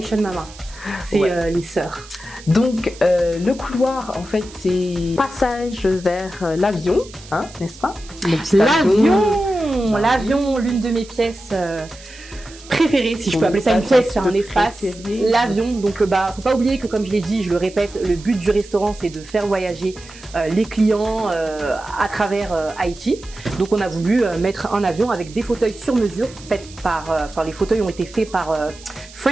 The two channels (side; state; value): right; noise; hiss, 20 dB below the sound